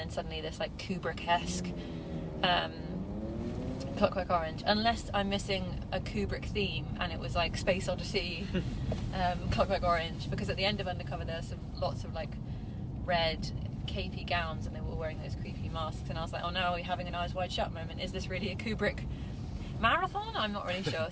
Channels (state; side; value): identical; both; correlation 1.00